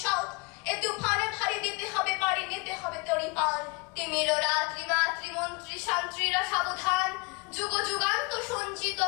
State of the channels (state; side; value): quieter; right; 28.6 dB